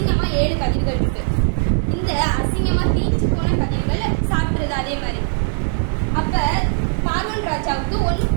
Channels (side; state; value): left; silent; digital silence